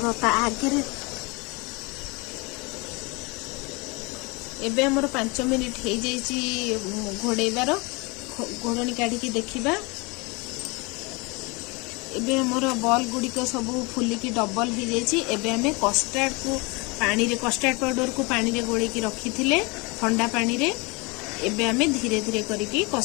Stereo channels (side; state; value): right; quieter; 27.6 dB